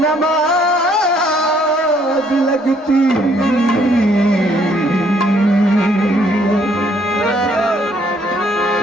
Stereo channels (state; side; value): normal; both; correlation 0.66